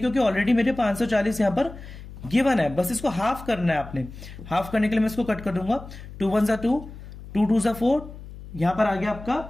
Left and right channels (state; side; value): noise; left; hum, 14 dB below the sound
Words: ऑलरेडी मेरे 540 यहां पर गिवन है। बस इसको हाफ करना है आपने। हाफ करने के लिए मैं इसको कट कर दूंगा। 2 1 2, 2 2 4, यहां पर आ गया आपका